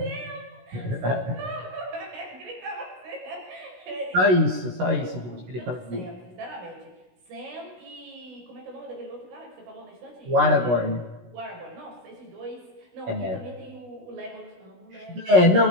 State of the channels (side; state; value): left; late; 16 ms